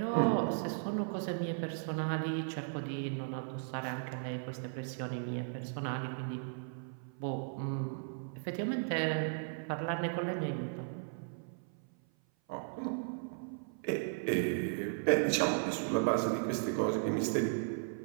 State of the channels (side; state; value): left; silent; 54 dB below the other